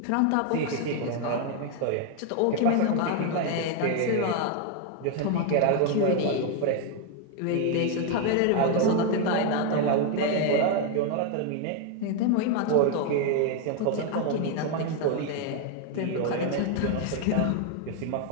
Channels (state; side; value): different; both; correlation 0.01